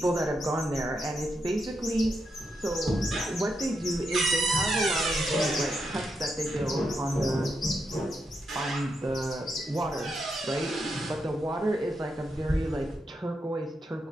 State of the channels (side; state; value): both; normal; correlation 0.83